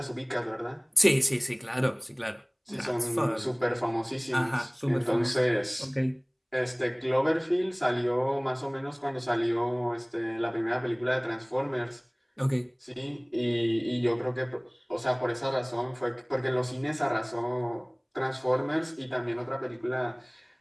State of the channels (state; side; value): identical; both; correlation 1.00